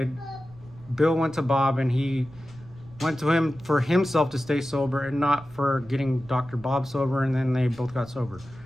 Bill went to Bob and he went to him for himself to stay sober and not for getting Dr. Bob sober, and then they both got sober.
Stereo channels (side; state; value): right; noise; rumble, 21 dB below the sound